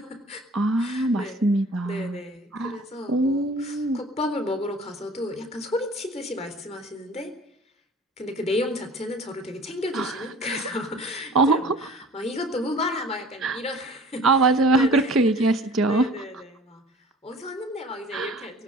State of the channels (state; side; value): normal; both; correlation 0.46